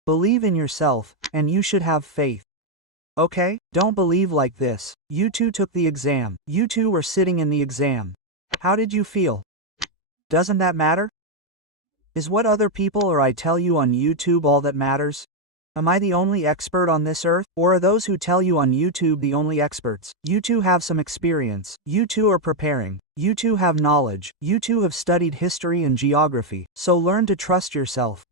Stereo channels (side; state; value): both; normal; correlation 0.02